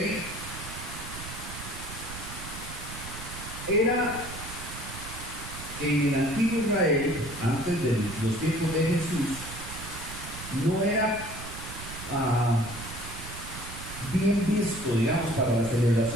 Era en el antiguo Israel, antes de los tiempos de Jesús, no era bien visto, digamos, para las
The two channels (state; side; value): noise; right; rumble, 11 dB below the sound